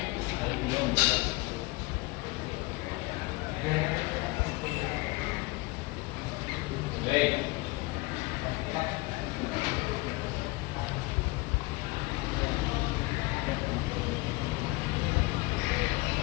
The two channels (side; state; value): right; quieter; 23.8 dB